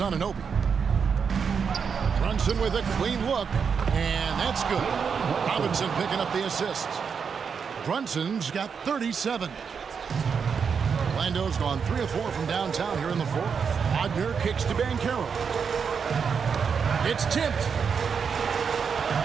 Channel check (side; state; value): left; quieter; 6.3 dB